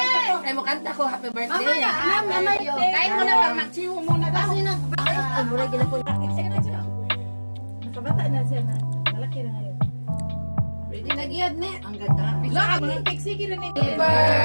Ay, mo kanta ko, happy birthday. Kain mo na pang magsiwo muna daw. Ay, mura gina po. Nakabata na siya na. Malaki na ngayon. Ready na giyad ne. Ang ganda. Lahat mga keksiki rin eh. Happy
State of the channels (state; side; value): inverted; both; correlation -1.00